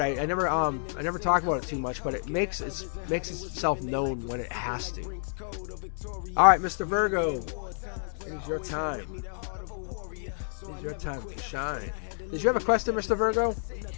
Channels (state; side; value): silent; right; digital silence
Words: I never talk about it too much, but it makes itself known when it has to. All right, Mr. Virgo, it's your time. It's your time to shine. Did you have a question, Mr. Virgo?